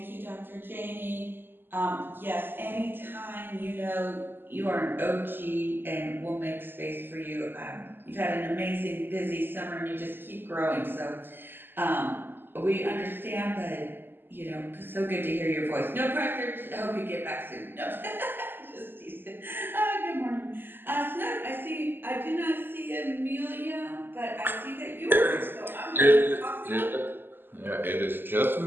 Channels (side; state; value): left; late; 0.096 ms